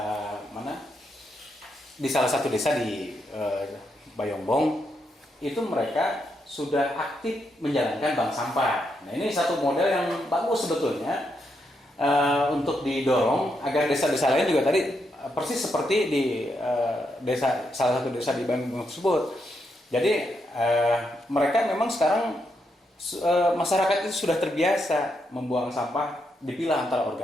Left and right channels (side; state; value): both; normal; correlation 0.81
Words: mana? Di salah satu desa di Bayongbong, itu mereka sudah aktif menjalankan bank sampah. Nah, ini satu model yang bagus sebetulnya untuk didorong agar desa-desa lain juga tadi persis seperti di salah satu desa di Bandung tersebut. Jadi mereka memang sekarang masyarakat itu sudah terbiasa membuang sampah, dipilah antara